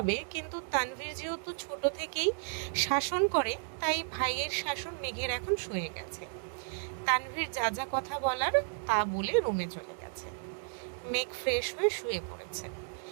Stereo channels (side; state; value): left; silent; 56 dB below the other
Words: কিন্তু তানভীর যেহেতু ছোট থেকেই শাসন করে, তাই ভাইয়ের শাসন মেঘের এখন সয়ে গেছে। তানভীর যা যা কথা বলার তা বলে রুমে চলে গেছে। মেঘ ফ্রেশ হয়ে শুয়ে পড়েছে।